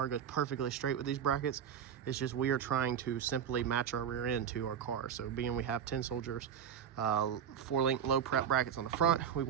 goes perfectly straight with these brackets. It's just we are trying to simply match our rear end to our car. So being we have 10 Soldiers 4-link low prep brackets on the front, we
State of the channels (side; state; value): left; quieter; 8.4 dB